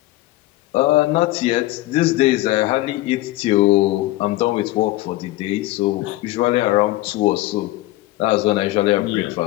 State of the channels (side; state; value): right; quieter; 17.5 dB